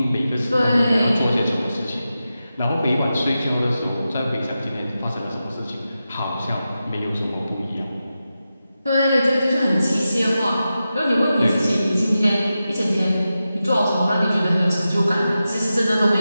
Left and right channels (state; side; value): inverted; both; correlation -0.91